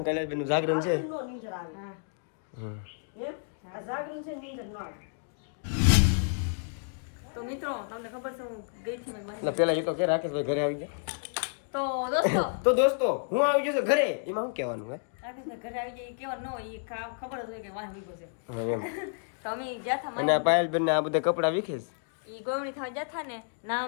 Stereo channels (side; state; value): right; silent; digital silence